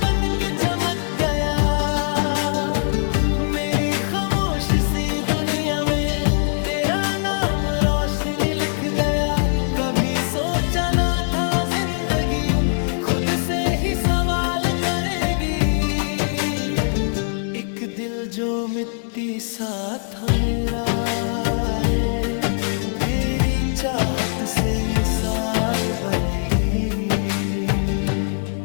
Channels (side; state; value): right; silent; digital silence